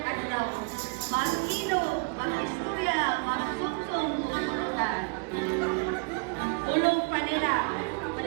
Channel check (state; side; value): quieter; left; 33.1 dB